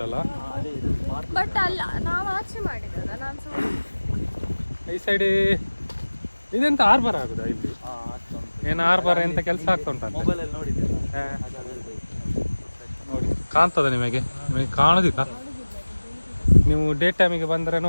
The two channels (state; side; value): inverted; both; correlation -1.00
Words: ಬಟ್ ಅಲ್ಲ, ನಾವು ಆಚೆ ಮಾಡಿದ್ರಲ್ಲ. ನಾನು ಈ ಸೈಡ್ ಇದೆಂತ ಆರ್ಬರ್ ಆಗುದಾ ಇಲ್ಲಿ? ಏನು ಆರ್ಬರ್ ಎಂತ ಕೆಲಸ ಆಗ್ತಾ ಉಂಟಂತ ನೋಡಿ. ಕಾಣ್ತದ ನಿಮಗೆ ಕಾಣುದಿಲ್ಲ? ನೀವು ಡೇ ಟೈಮಿಗೆ ಬಂದರೆ